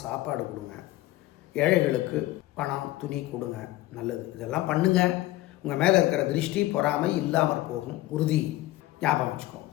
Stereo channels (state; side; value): quieter; right; 17.0 dB